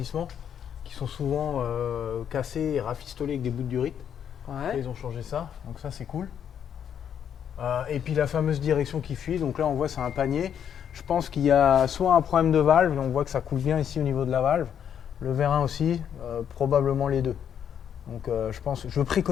qui sont souvent cassés et rafistolés avec des bouts de durite. Ouais. Ils ont changé ça, donc ça c'est cool. Et puis la fameuse direction qui fuit, donc là on voit c'est un panier. Je pense qu'il y a soit un problème de valve, on voit que ça coule bien ici au niveau de la valve. Le vérin aussi, probablement les deux. Donc je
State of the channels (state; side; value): quieter; right; 8.7 dB